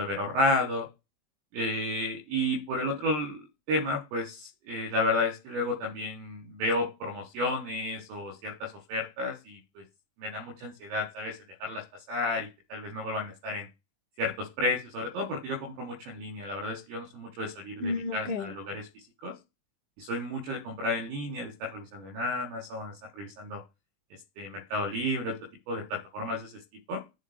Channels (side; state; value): left; late; 20 ms